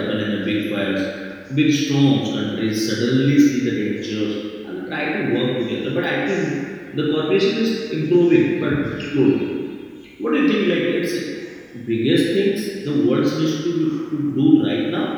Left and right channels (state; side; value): identical; both; correlation 1.00